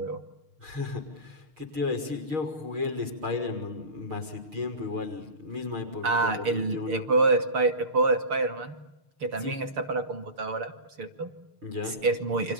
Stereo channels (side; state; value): left; late; 6.7 ms